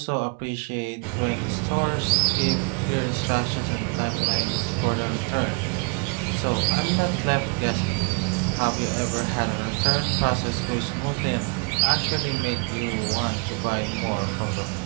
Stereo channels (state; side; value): quieter; left; 33.1 dB